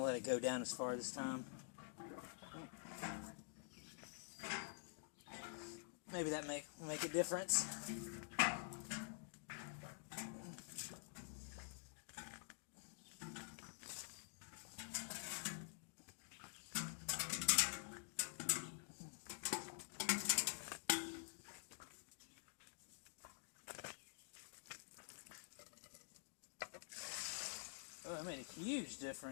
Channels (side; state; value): right; silent; digital silence